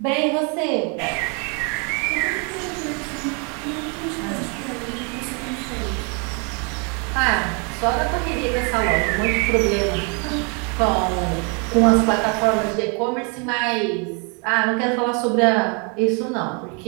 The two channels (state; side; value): quieter; left; 35.2 dB